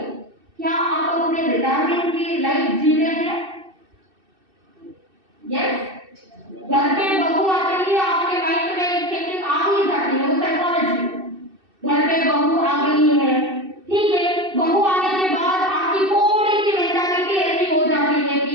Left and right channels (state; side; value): late; left; 2.6 ms